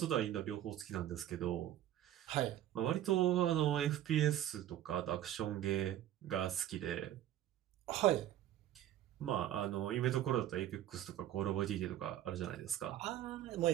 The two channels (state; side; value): quieter; left; 12.2 dB